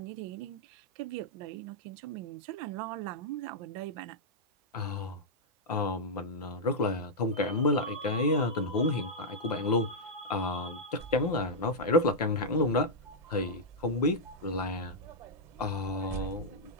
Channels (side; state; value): both; normal; correlation -0.06